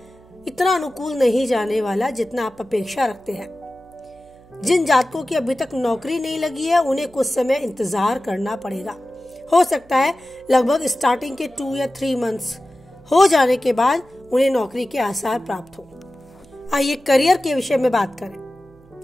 इतना अनुकूल नहीं जाने वाला जितना आप अपेक्षा रखते हैं। जिन जातकों की अभी तक नौकरी नहीं लगी है, उन्हें कुछ समय इंतजार करना पड़ेगा। हो सकता है लगभग स्टार्टिंग के 2 या 3 मंथ्स हो जाने के बाद उन्हें नौकरी के आसार प्राप्त हो। आइए करियर के विषय में बात करें।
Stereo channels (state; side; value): noise; right; hum, 27 dB below the sound